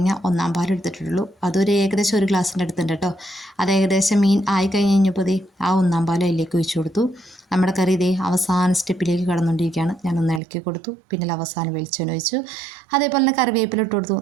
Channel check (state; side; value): drops out; left; at 10.4 s